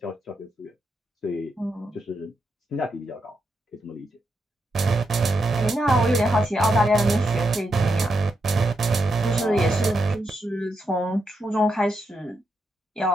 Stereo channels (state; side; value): normal; both; correlation 0.83